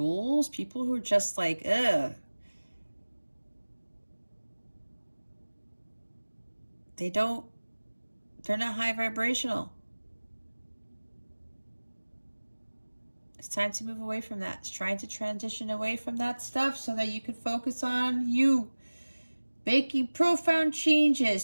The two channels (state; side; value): inverted; both; correlation -1.00